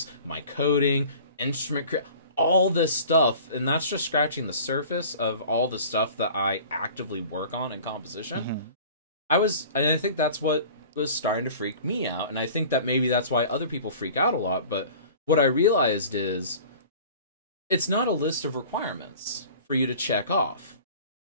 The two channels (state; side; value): inverted; both; correlation -0.44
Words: my coding, instrument all this stuff, and that's just scratching the surface of all the stuff that I actively work on in composition. I think that's what was starting to freak me out, and I think that maybe that's why other people freak out a lot. But what I realized is it's not a list of requirements for you to check off